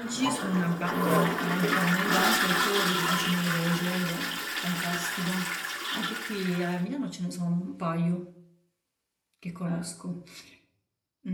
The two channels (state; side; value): identical; both; correlation 1.00